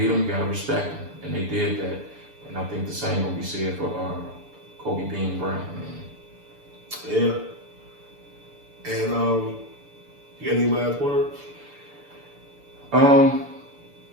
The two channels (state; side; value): late; left; 6.9 ms